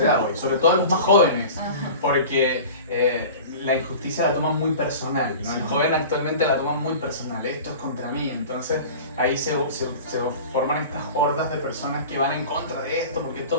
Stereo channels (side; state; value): both; inverted; correlation -0.37